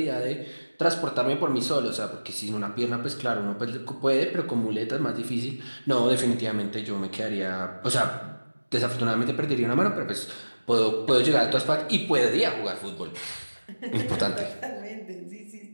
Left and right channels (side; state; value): both; inverted; correlation -1.00